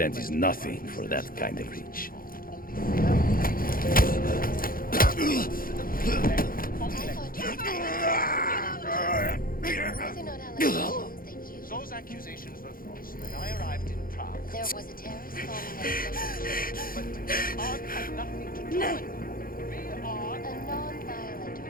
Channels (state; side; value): late; right; 0.42 ms